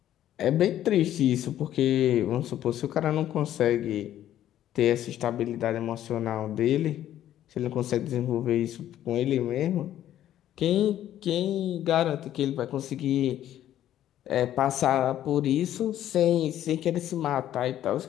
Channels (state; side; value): quieter; right; 12.0 dB